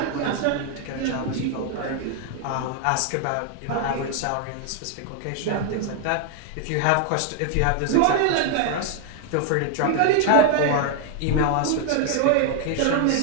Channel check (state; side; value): different; both; correlation 0.00